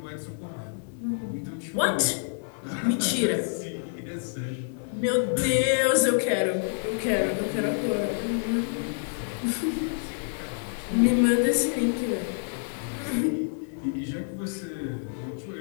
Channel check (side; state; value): right; silent; digital silence